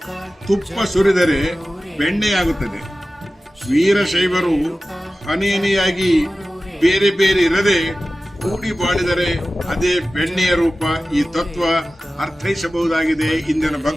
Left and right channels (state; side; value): normal; both; correlation 0.95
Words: ತುಪ್ಪ ಸುರಿದರೆ ಬೆಣ್ಣೆಯಾಗುತ್ತದೆ. ವೀರಶೈವರು ಹನಿಯಾಗಿ ಬೇರೆ ಬೇರೆ ಇರದೆ ಕೂಡಿ ಬಾಳಿದರೆ ಅದೇ ಬೆಣ್ಣೆಯ ರೂಪ. ಈ ತತ್ವ ಅರ್ಥೈಸಬಹುದಾಗಿದೆ ಇಂದಿನ